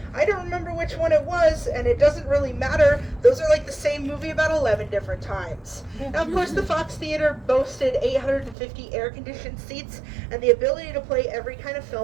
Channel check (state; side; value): drops out; left; at 8.6 s